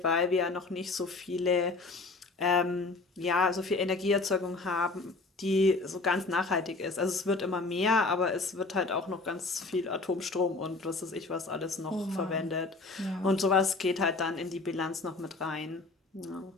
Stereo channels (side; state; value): right; quieter; 3.6 dB